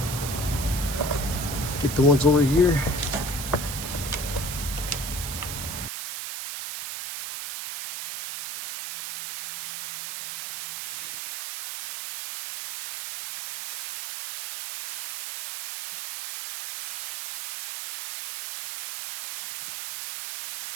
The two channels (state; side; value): noise; right; hiss, 6 dB below the sound